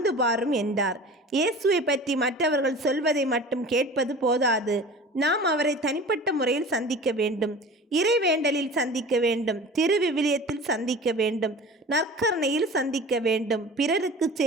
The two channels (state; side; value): normal; both; correlation 0.39